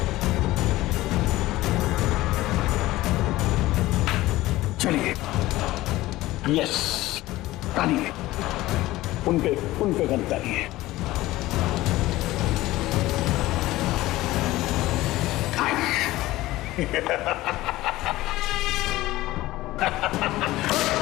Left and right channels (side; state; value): right; quieter; 17.4 dB